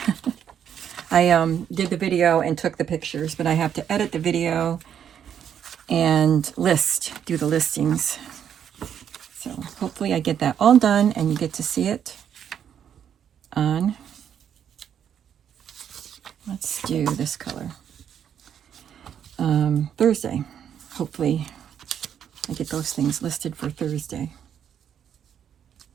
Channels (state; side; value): quieter; left; 8.9 dB